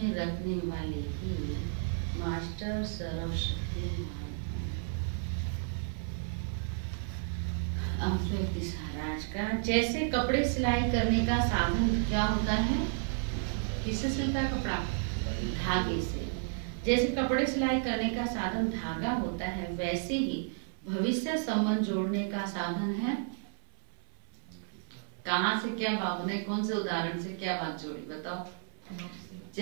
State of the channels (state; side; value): silent; left; 56 dB below the other